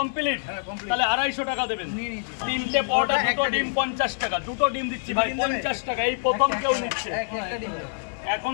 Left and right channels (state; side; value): silent; right; digital silence